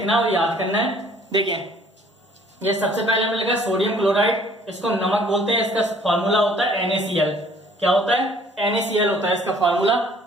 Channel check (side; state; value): both; normal; correlation 0.57